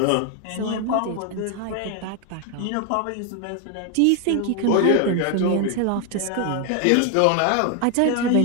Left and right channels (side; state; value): both; different; correlation 0.00